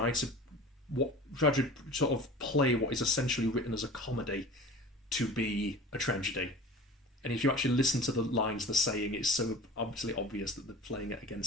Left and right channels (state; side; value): normal; both; correlation 0.39